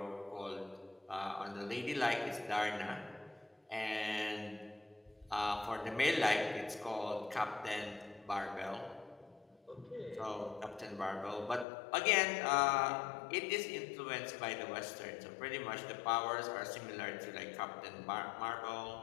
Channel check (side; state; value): right; drops out; at 11.7 s